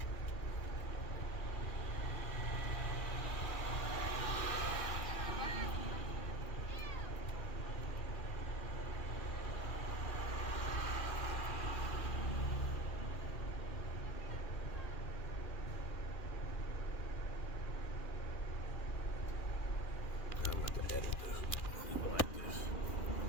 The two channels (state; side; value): late; right; 2.4 ms